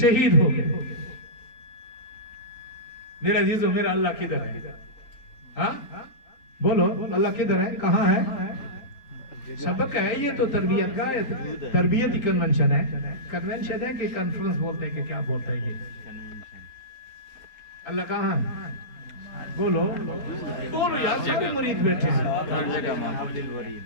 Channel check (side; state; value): right; late; 3.8 ms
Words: हो गए। मेरा अजीजों, मेरा अल्लाह किधर है? हाँ बोलो, अल्लाह किधर है? कहाँ है? सबक है ये तो तरबियत का, तरबियती कन्वेंशन है। कन्वेंशन है कि कॉन्फ्रेंस बोलते हैं कि क्या बोलते हैं ये? अल्लाह कहाँ है? बोलो बोलो यार, सभी मुरीद बैठे हैं,